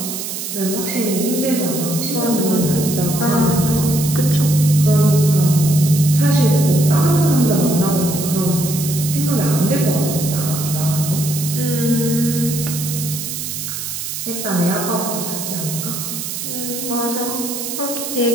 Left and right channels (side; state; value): right; noise; hiss, 6 dB below the sound